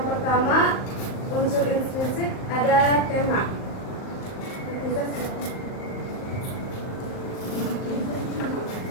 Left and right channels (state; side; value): late; right; 38 ms